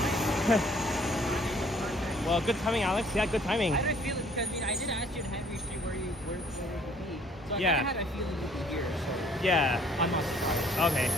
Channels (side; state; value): both; normal; correlation 0.58